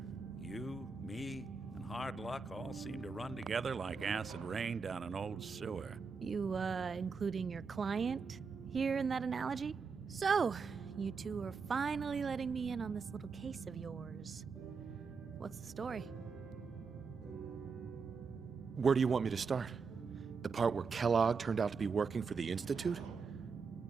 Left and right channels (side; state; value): left; quieter; 5.2 dB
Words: You, me, and hard luck all seem to run together like acid rain down an old sewer. You, including your client here in that analogy? So, you two are finally letting me in on this little case of yours. What's the story? Where do you want me to start? The part where Kellogg turned out to be working for the Institute?